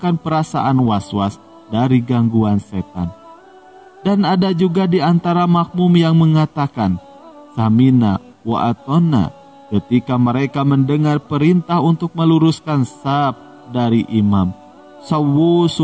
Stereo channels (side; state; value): both; identical; correlation 1.00